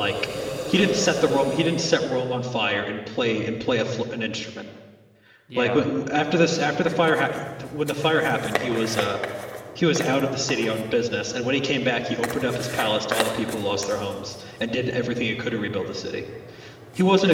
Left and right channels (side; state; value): both; identical; correlation 1.00